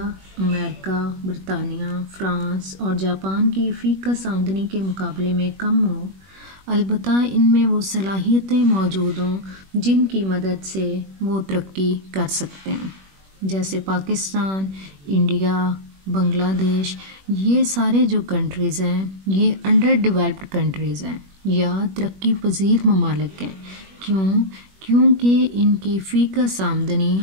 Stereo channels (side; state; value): left; late; 21 ms